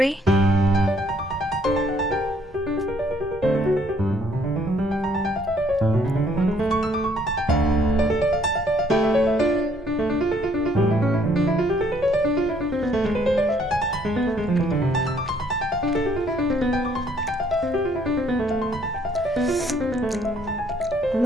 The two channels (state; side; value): normal; both; correlation 0.65